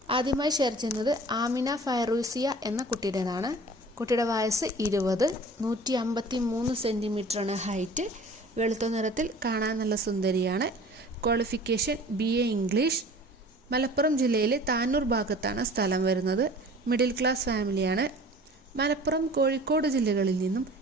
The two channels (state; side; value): normal; both; correlation 0.45